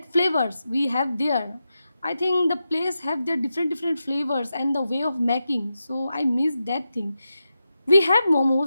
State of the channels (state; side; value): inverted; both; correlation -0.89